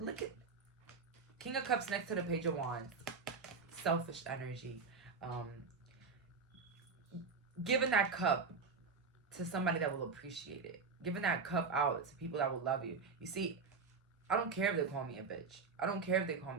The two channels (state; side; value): quieter; left; 4.9 dB